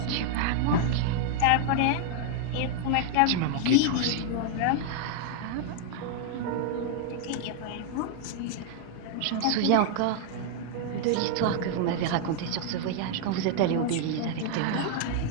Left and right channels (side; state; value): both; different; correlation 0.00